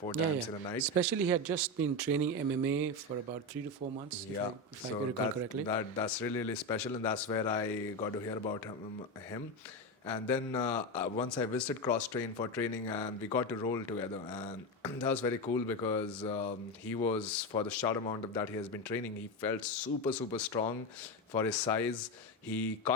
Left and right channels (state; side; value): normal; both; correlation 0.15